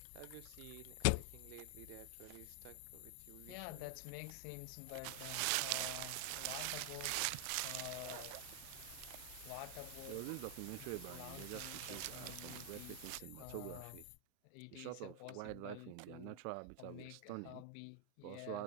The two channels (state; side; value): different; both; correlation 0.00